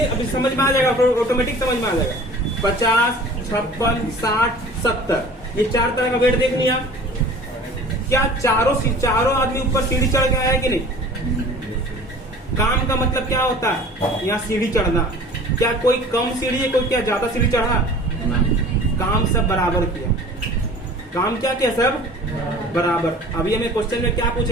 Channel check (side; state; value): both; normal; correlation 0.44